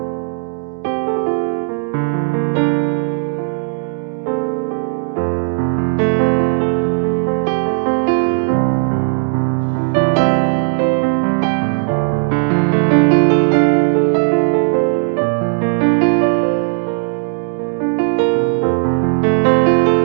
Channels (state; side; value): silent; left; digital silence